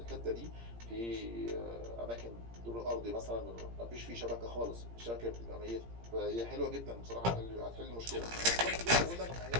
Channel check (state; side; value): late; left; 17 ms